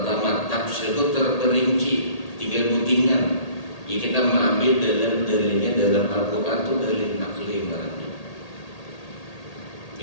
tafsir itu terperinci 3 butingan. Jadi kita mengambil dalam dalilnya dalam Al-Quran itu dalil naqli barangnya.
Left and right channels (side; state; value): right; late; 1.8 ms